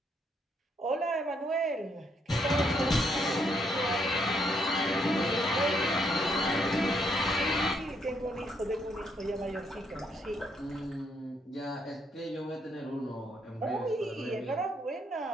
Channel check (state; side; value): normal; both; correlation 0.73